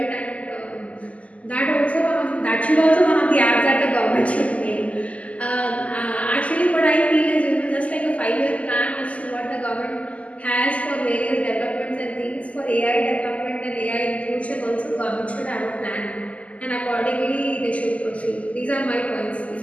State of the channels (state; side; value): late; right; 0.068 ms